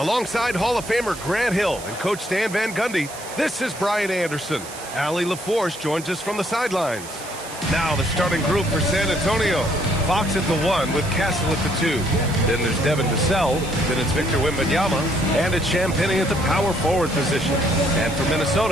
Hall of Famer Grant Hill and Coach Stan Van Gundy, this is Brian Anderson. Allie LaForce joins us from the sidelines. Now the starting group for San Antonio. Fox at the 1 with Castle at the 2. Then there's Devin Vassell. Then it's Victor Wembanyama. And it's Champagnie at the power forward position. And for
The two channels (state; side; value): noise; right; hiss, 14 dB below the sound